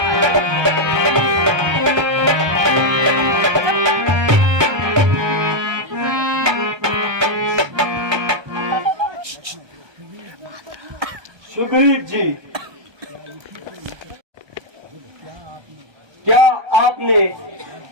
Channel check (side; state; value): left; late; 1.2 ms